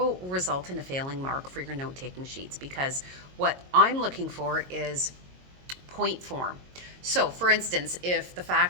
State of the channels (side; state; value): left; late; 22 ms